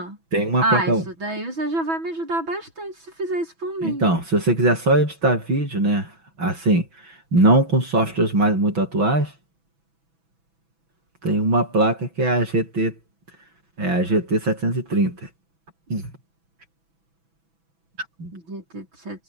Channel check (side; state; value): left; late; 6.1 ms